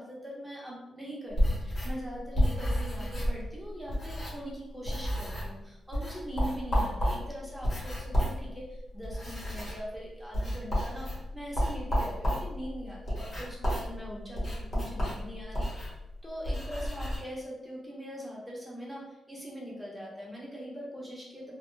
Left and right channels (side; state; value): both; normal; correlation 0.92